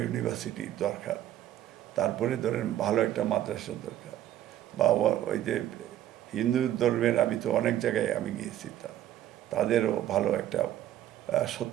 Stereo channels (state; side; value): quieter; left; 12.3 dB